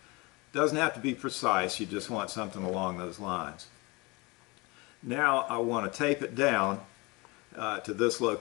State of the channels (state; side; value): quieter; right; 25.6 dB